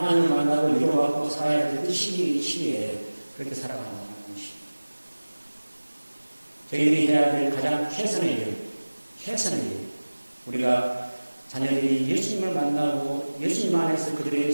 만나고 위로받고 살아야 될 그 시기에 그렇게 살아가는 것입니다. 저희들이 해야 될 가장 최선의 일, 우리가 자녀들이 예수님을 만나고 예수님 안에서 그들의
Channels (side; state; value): both; inverted; correlation -1.00